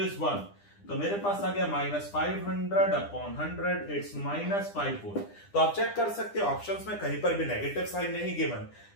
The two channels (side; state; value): right; late; 9.9 ms